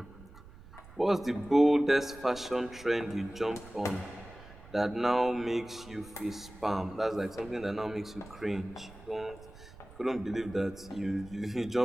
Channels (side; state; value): right; noise; rumble, 19 dB below the sound